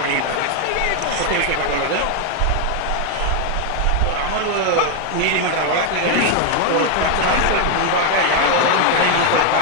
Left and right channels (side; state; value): both; different; correlation 0.01